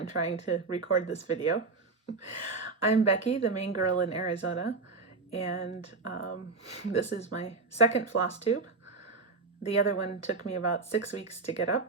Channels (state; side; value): quieter; left; 3.9 dB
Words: trying to record this video. I'm Becky, the main girl in Arizona, and this is my second Flosstube. The other one took me about 6 weeks to get